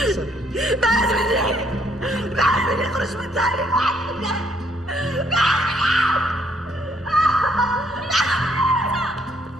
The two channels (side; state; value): both; normal; correlation 0.69